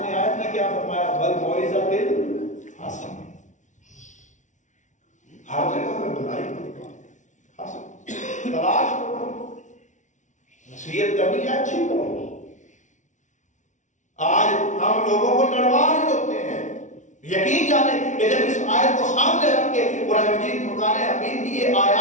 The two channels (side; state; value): right; late; 0.36 ms